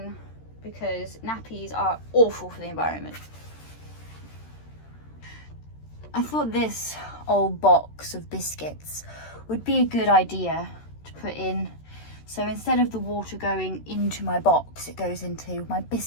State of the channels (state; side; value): late; right; 13 ms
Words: because nappies are awful for the environment. I thought this old box of biscuits would be a good idea to put in. So instead of the water going into my box, it goes into my